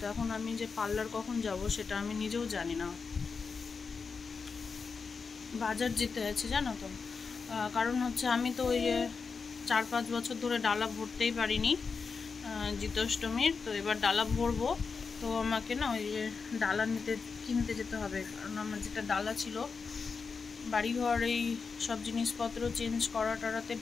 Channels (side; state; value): right; quieter; 5.1 dB